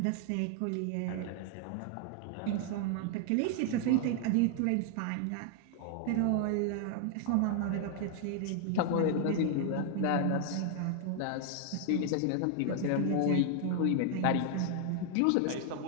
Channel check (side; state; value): both; different; correlation 0.00